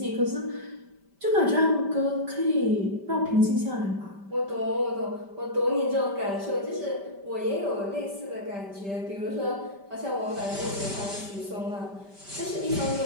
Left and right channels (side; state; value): left; late; 5.1 ms